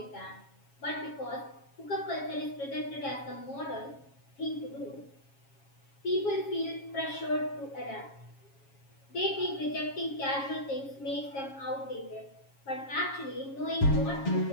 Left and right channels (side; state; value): right; late; 7.3 ms